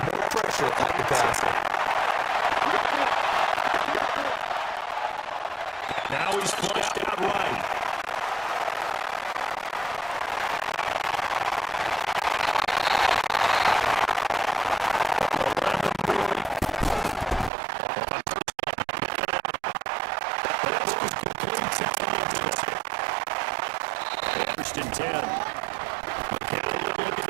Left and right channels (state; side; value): drops out; left; at 17.5 s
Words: pressure at the passer. Now he's flushed out right. First and 10. McCown looking